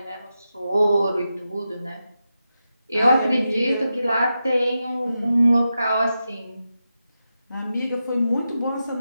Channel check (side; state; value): both; inverted; correlation -0.89